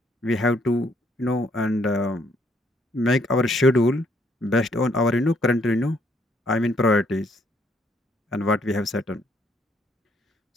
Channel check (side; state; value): both; normal; correlation 0.69